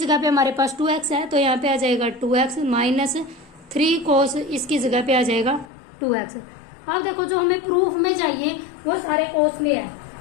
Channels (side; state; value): right; drops out; at 5.7 s